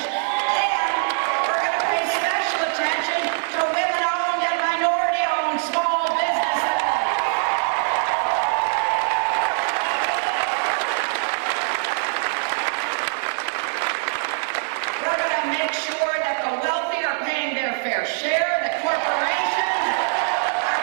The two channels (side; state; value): left; silent; 58 dB below the other